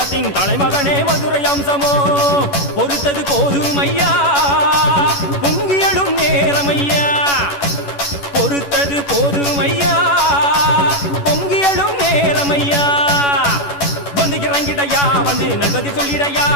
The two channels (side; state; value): right; late; 11 ms